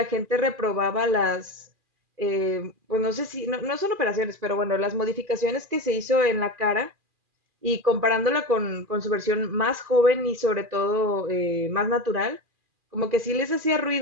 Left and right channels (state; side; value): late; left; 2.4 ms